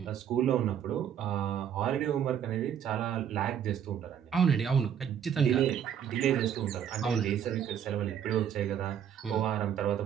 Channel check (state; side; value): quieter; left; 8.9 dB